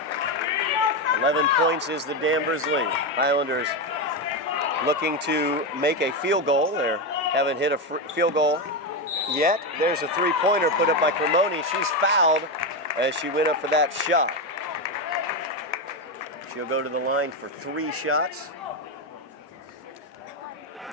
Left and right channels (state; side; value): normal; both; correlation 0.11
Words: 11 points is the Danvers lead. Highlanders looking to make a field goal. They haven't hit a field goal yet. There's a three-pointer put up by Cremoni. She's fouled as she went up for that shot. She'll go to the line for 3 shots.